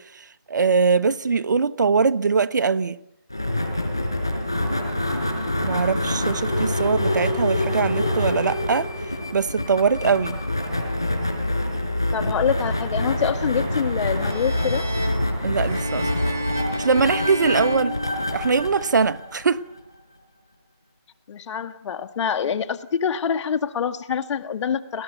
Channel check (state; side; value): inverted; both; correlation -0.63